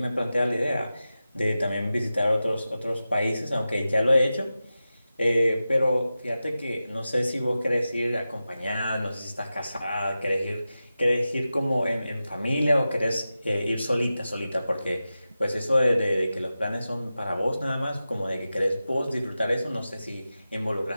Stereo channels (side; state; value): both; inverted; correlation -0.93